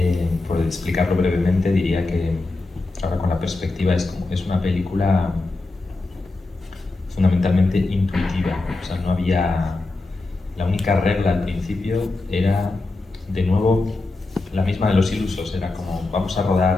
Por explicarlo brevemente, diría que ahora con la perspectiva es una película fundamentalmente intuitiva. O sea, no había... La única regla al principio era, de nuevo, la misma de Los Ilusos. Era como, vamos a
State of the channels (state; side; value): quieter; right; 3.2 dB